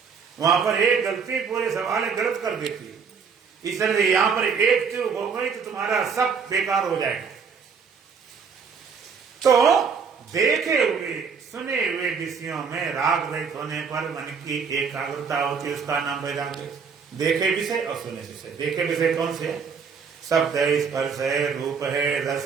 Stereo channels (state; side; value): quieter; left; 5.9 dB